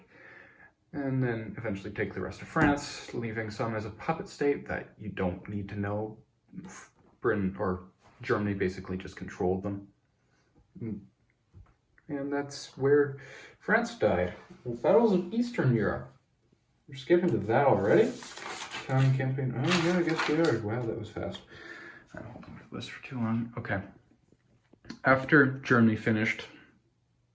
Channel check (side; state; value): both; identical; correlation 1.00